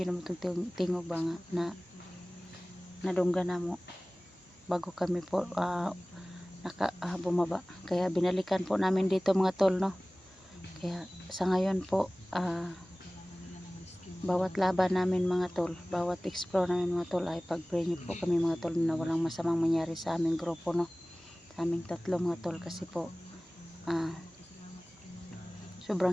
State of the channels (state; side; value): normal; both; correlation 0.98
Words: naman tingog ba nga na nadungga na mo bago kami po bumaba, kaya binalikan po namin dito mga tol, no. Kaya sa ngayon po bawat laban namin mga tol, bawat explore namin mga tol ay pag-pray niyo po kami mga tol na walang masamang mangyari sa aming grupo, no, sa aming tatlo mga tol, kasi po sobrang